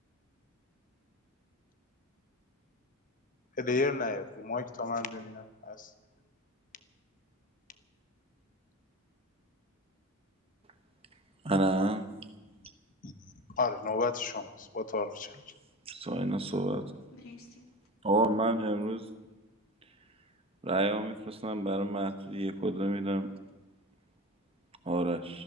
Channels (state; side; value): normal; both; correlation 0.30